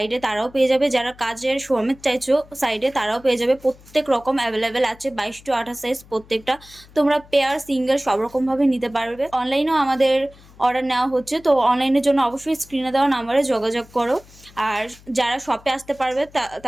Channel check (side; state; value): left; noise; hum, 24 dB below the sound